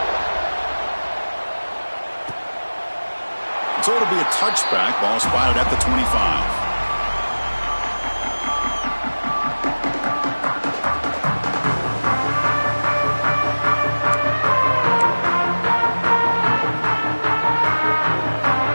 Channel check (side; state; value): both; inverted; correlation -1.00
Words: So it'll be a touchback. Ball spotted at the 25.